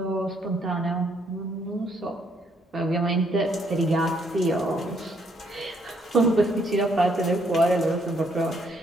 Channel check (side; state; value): both; normal; correlation 0.70